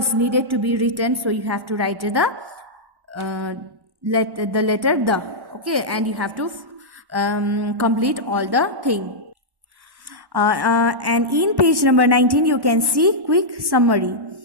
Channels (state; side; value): late; left; 1.1 ms